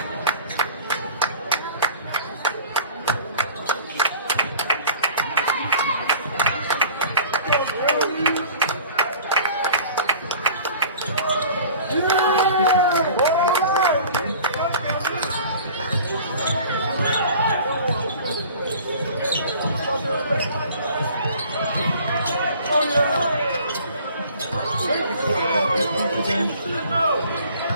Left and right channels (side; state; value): both; inverted; correlation -0.46